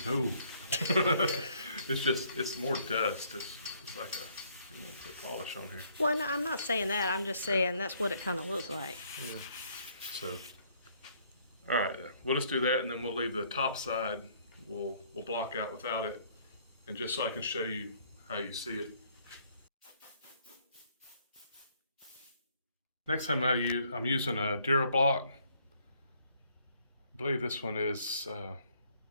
No. it's more dust. It's like you want to put polish on here. Well, no, I'm not saying that. I'm just saying that's what it kind of looks like. Yeah. So, all right, we'll just do that, and then we'll leave the top side. We'll block out without it, and just so I can show you how you see it. Next time I'm using a DuraBlock. I believe this one is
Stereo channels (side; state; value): both; inverted; correlation -0.65